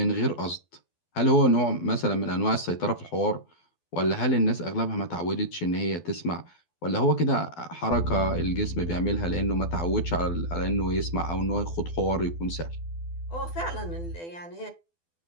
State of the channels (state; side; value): late; right; 12 ms